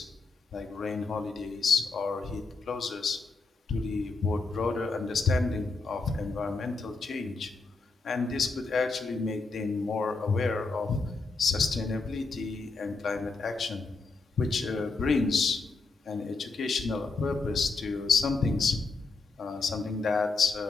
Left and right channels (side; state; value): right; quieter; 3.9 dB